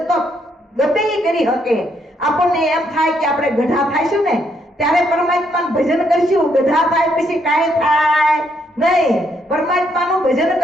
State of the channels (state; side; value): normal; both; correlation 0.74